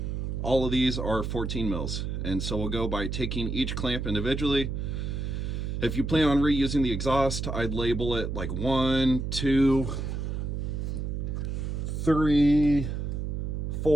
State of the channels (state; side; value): noise; right; hum, 3 dB below the sound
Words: all of these are 14 mils, and so we'll go by taking each clamp individually. If you plan on reusing the exhaust, I'd label it like 1, 2, 3,